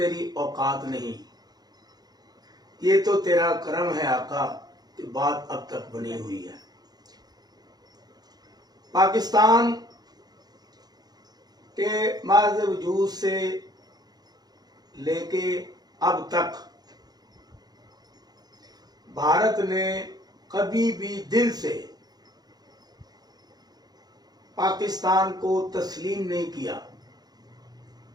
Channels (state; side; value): late; left; 0.19 ms